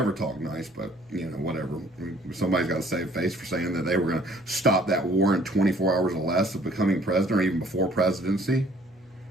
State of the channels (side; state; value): left; noise; hum, 29 dB below the sound